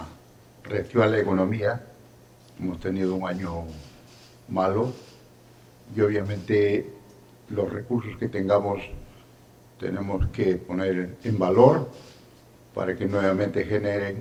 reactivar la economía. Hemos tenido un año malo y obviamente los recursos que tengamos tenemos que poner en valor para que nuevamente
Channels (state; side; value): identical; both; correlation 1.00